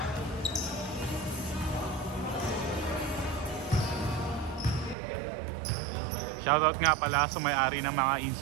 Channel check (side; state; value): left; drops out; at 5.0 s